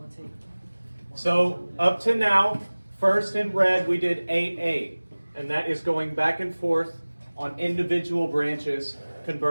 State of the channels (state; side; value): inverted; both; correlation -1.00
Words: So up to now, first in red, we did 8A, and that is going back and forth on individual branches,